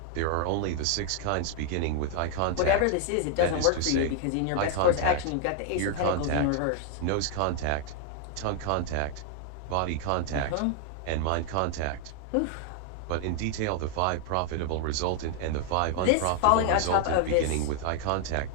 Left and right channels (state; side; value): different; both; correlation 0.00